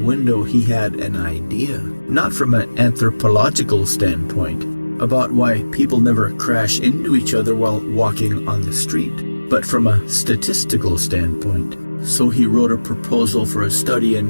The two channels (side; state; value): both; inverted; correlation -1.00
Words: he had an idea, not from an anthropological standpoint, about why people never crash into each other while walking on the street, but from a statistical standpoint. So he wrote a proposal for a study